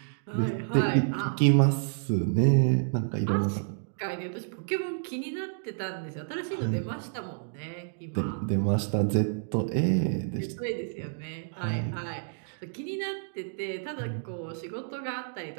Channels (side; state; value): left; silent; digital silence